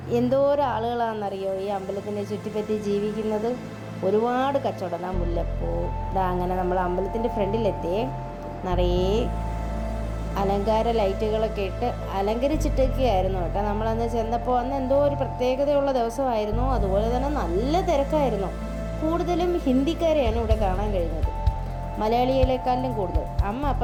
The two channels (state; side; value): identical; both; correlation 1.00